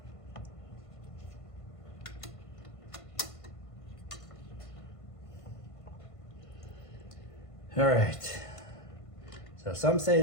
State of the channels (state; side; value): late; right; 1.5 ms